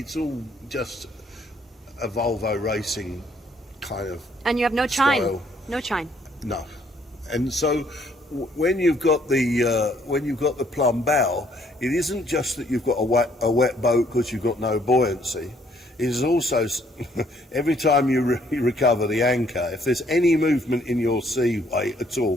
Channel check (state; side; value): normal; both; correlation 0.65